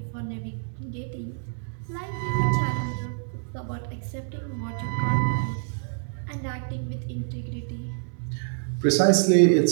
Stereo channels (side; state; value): left; silent; 60 dB below the other